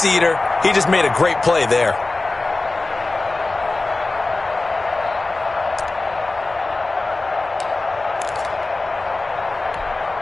eater, he just made a great play there.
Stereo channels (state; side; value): quieter; right; 3.3 dB